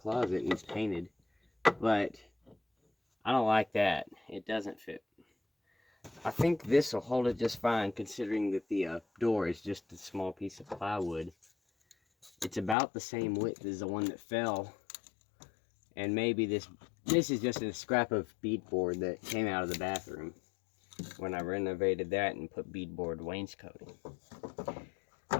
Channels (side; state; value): right; drops out; at 12.8 s